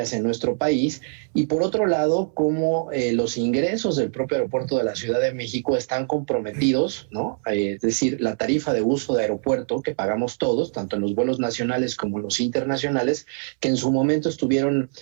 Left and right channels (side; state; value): left; silent; 63 dB below the other